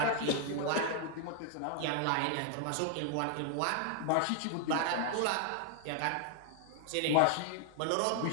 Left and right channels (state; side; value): different; both; correlation 0.00